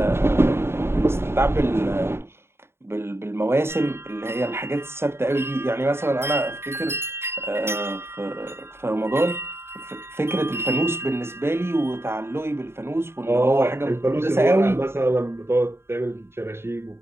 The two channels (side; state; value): left; late; 0.12 ms